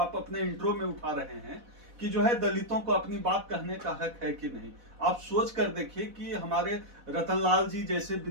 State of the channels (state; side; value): late; left; 4.1 ms